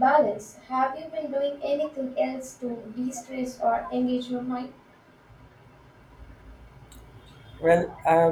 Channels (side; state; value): both; identical; correlation 1.00